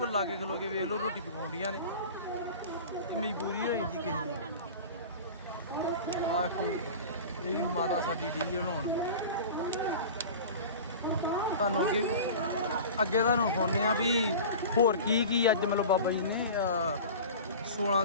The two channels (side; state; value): both; inverted; correlation -0.36